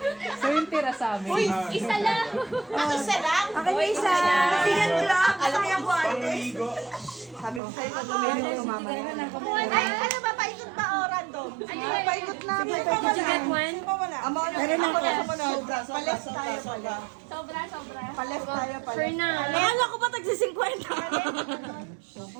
So yung tira sa amin. Isa lang! Isa lang? Akin na isa. Tingnan ko lang. Alam mo yung guantes? Sabi ko sa'yo, gagawin ko mamaya. Ay, ano ba? Paikot ba o random? Paikot na. Did you get one? Meron na ako. Pales tayo pala. Sobra. Pales tayo pala. Fernan. Kaya ko pa tagsi 50.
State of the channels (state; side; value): drops out; left; at 7.6 s